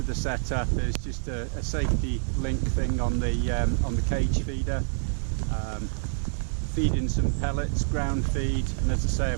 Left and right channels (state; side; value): silent; left; digital silence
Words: the setup is just a safety link thing on the cage feeder. Feeding some pellets, ground feed, and as I say,